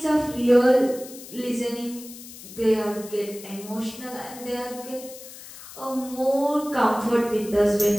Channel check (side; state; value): left; noise; hiss, 16 dB below the sound